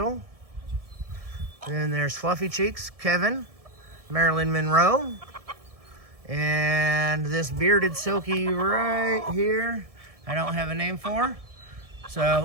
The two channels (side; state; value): left; late; 1.7 ms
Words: And then there's Fluffy Cheeks, Kevin, Marilyn Monroe, and this bearded silky right here, I don't have a name for.